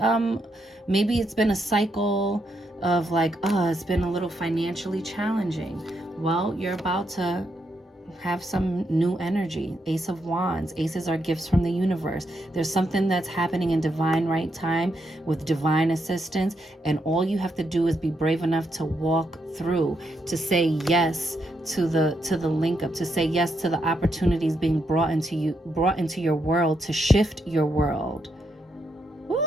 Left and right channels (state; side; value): normal; both; correlation 0.80